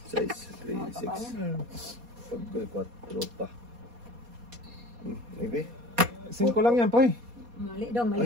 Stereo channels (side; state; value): left; late; 4.2 ms